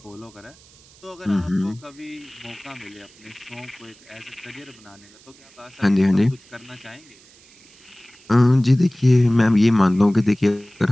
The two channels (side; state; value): right; noise; hiss, 26 dB below the sound